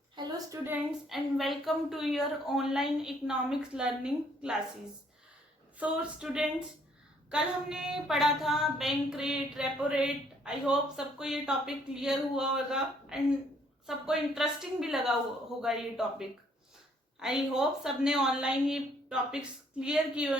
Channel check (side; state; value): both; normal; correlation 0.65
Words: Hello students and welcome to your online economics learning classes. So students, कल हमने पढ़ा था bank rate, repo rate. I hope सबको ये टॉपिक क्लियर हुआ होगा एंड सबको इंटरेस्टिंग भी लगा होगा ये टॉपिक. आई होप सबने ऑनलाइन ये टॉपिक्स क्लियर किए